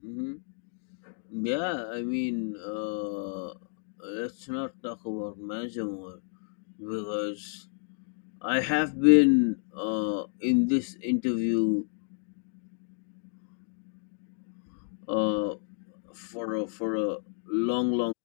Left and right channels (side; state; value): right; silent; digital silence